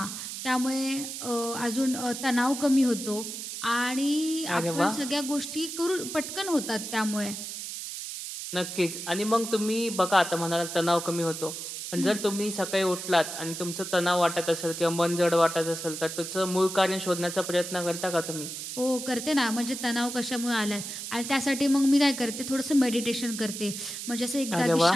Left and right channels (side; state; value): right; noise; hiss, 7 dB below the sound